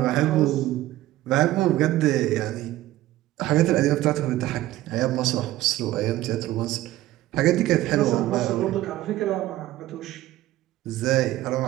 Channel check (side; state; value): left; quieter; 15.5 dB